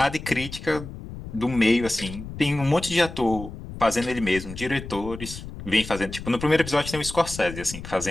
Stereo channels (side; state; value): left; noise; rumble, 11 dB below the sound